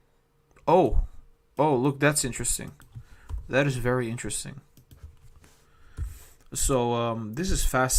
Oh, look, that's interesting. That is very interesting. So this is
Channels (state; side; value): identical; both; correlation 1.00